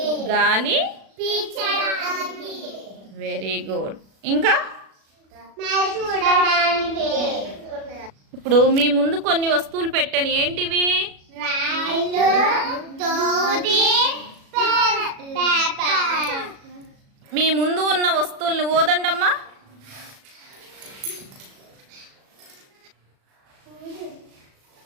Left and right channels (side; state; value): left; late; 36 ms